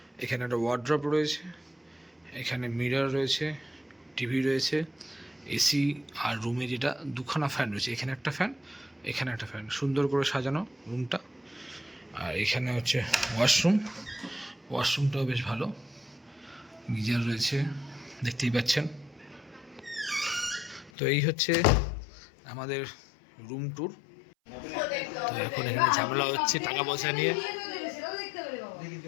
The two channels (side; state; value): right; drops out; at 20.9 s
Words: এখানে একটা ওয়ার্ড্রপ রয়েছে, এখানে মিরর রয়েছে, টিভি রয়েছে, এসি, আর রুমে যেটা দুখানা ফ্যান রয়েছে, এখানে একটা ফ্যান, এখানে একটা ফ্যান। সুন্দর করে সাজানো রুমটা। আর এখানে হচ্ছে ওয়াশরুমটাও বেশ ভালো, গিজার রয়েছে, দেখতেই পাচ্ছেন। তো এই হচ্ছে আমাদের রুম ট্যুর। তো এখন এখানে ঝামেলা হচ্ছে টাকা পয়সা নিয়ে।